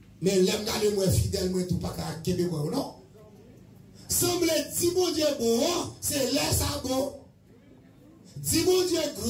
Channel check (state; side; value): identical; both; correlation 1.00